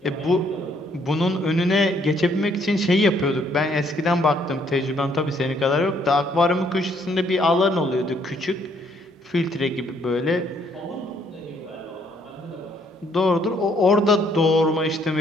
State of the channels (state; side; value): normal; both; correlation 0.67